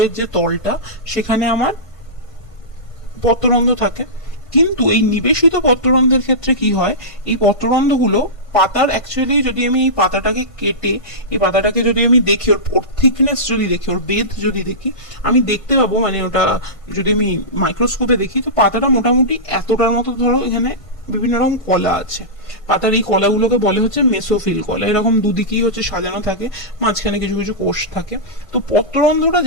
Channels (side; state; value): right; late; 1.5 ms